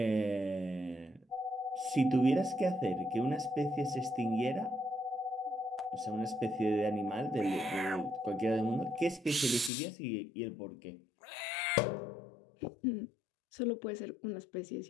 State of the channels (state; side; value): drops out; right; at 9.7 s